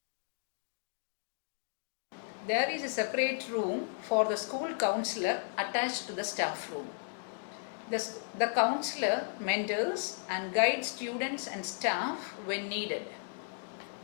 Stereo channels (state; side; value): silent; right; digital silence